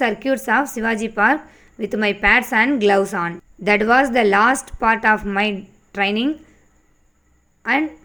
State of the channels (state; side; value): identical; both; correlation 1.00